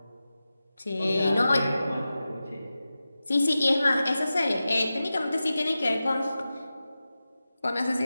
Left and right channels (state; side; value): inverted; both; correlation -0.94